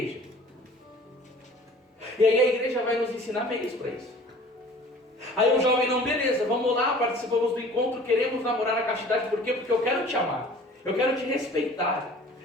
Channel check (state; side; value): normal; both; correlation 0.47